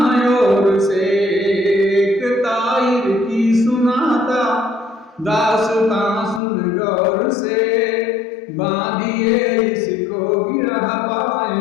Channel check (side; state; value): right; drops out; at 6.4 s